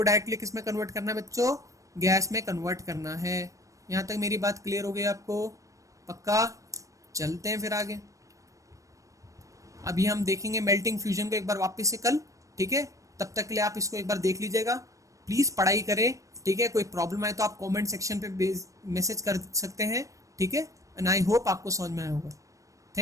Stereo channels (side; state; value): left; late; 0.16 ms